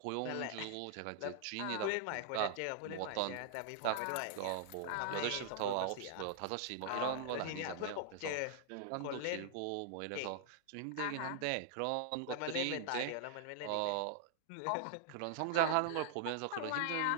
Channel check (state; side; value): different; both; correlation -0.01